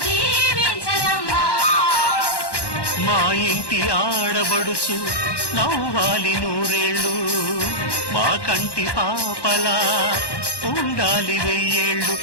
దీవించరమ్మా మా ఇంటి ఆడబడుచు నవ్వాలి నూరేళ్ళు మా కంటి పాపలా ఉండాలి వెయ్యేళ్ళు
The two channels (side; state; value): right; late; 1.1 ms